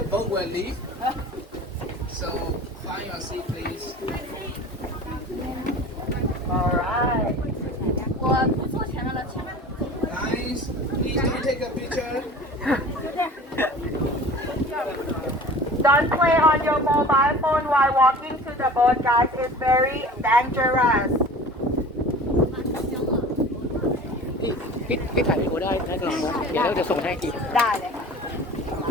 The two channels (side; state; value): both; normal; correlation 0.41